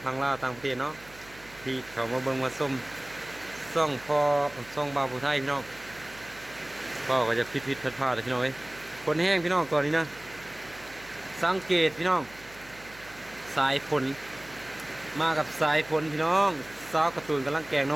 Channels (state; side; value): noise; right; hum, 22 dB below the sound